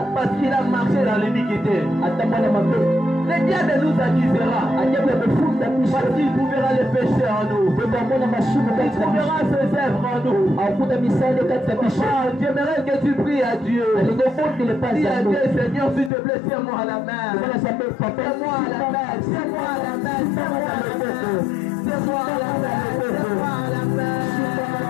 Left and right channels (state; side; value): drops out; right; at 16.1 s